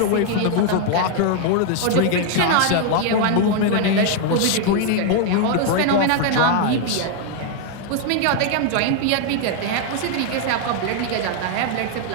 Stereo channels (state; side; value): different; both; correlation 0.00